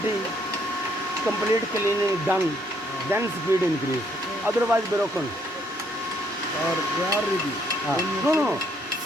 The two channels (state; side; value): normal; both; correlation 0.69